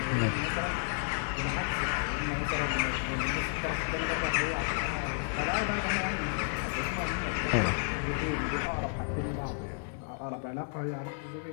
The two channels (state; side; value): silent; right; 57 dB below the other